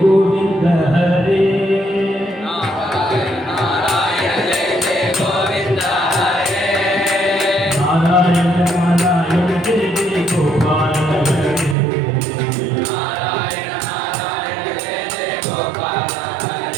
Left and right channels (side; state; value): left; drops out; at 11.8 s